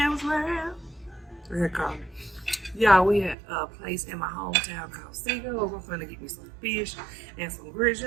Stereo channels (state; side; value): drops out; left; at 3.4 s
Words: World. Y'all, we at a place in my hometown called Seagulls. I'm finna get me some fish and some grits.